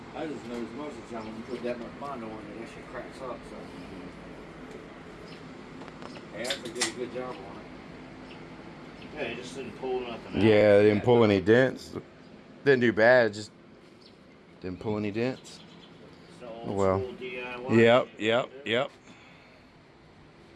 I just noticed most of the time when you put that much Bondo on it, that shit cracks up. So, hey, I did a good job on it. Yeah, you just didn't pull nothing out. Yeah, they didn't pull any dents. Didn't do bad, just didn't pull any dents. It's the old Oh well. school DIY. Yep.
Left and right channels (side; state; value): both; identical; correlation 1.00